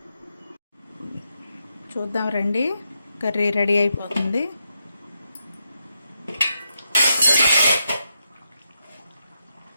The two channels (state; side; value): inverted; both; correlation -0.84